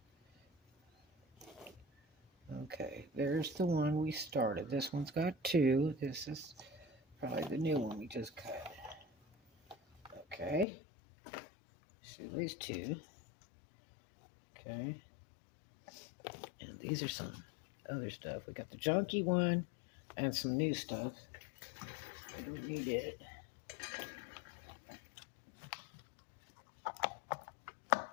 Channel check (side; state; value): right; drops out; at 10.7 s